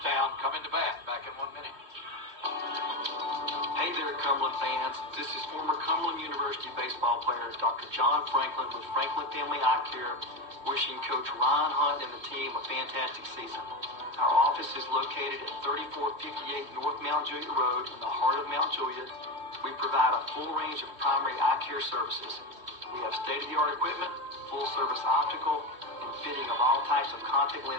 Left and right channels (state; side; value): late; left; 3.1 ms